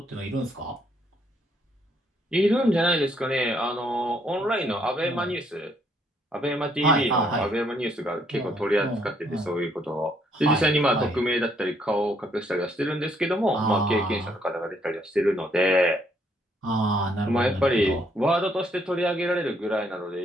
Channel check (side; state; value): both; normal; correlation 0.70